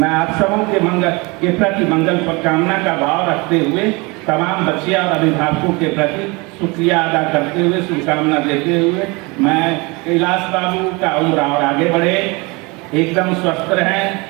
आप सबों के मंगल के प्रति मंगल कामना का भाव रखते हुए तमाम बच्चे और अभिभावकों के प्रति शुक्रिया अदा करते हुए, शुभकामना देते हुए, मैं कैलाश बाबू का उम्र और आगे बढ़े, एकदम स्वस्थ रहें,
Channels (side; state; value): left; quieter; 26.5 dB